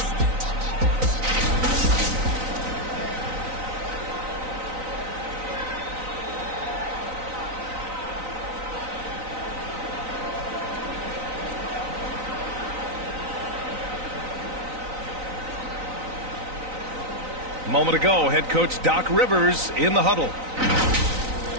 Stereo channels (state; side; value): late; left; 3.9 ms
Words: A moment ago, head coach Doc Rivers in the huddle.